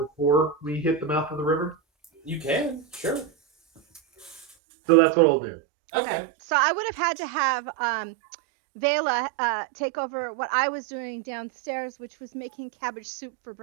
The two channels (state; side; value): drops out; left; at 4.5 s